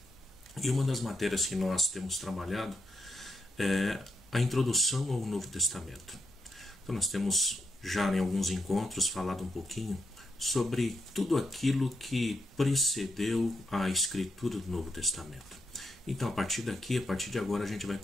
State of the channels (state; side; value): normal; both; correlation 0.81